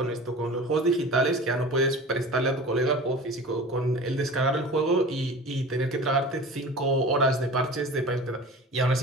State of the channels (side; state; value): both; normal; correlation 0.37